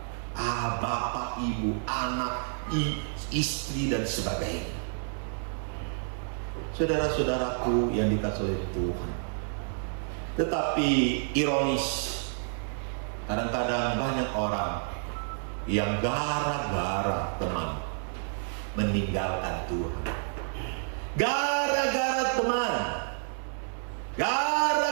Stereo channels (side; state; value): left; silent; 58 dB below the other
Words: bapak, ibu, anak, istri dan sebagainya. Saudara-saudaraku yang dikasihi oleh Tuhan, tetapi ironis, kadang-kadang banyak orang yang gara-gara teman meninggalkan Tuhan. Gara-gara teman,